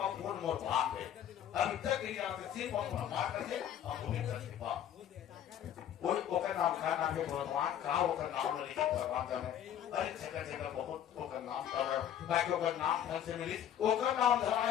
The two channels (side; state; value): right; quieter; 10.2 dB